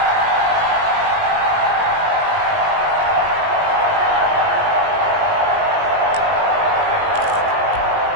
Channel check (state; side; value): late; left; 19 ms